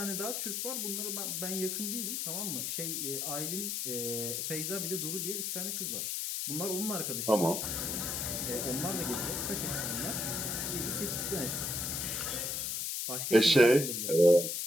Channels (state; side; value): noise; left; hiss, 1 dB below the sound